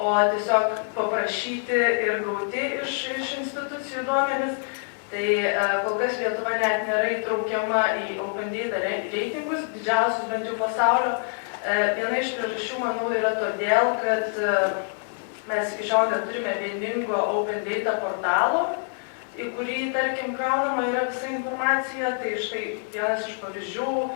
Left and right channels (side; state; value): right; silent; 61 dB below the other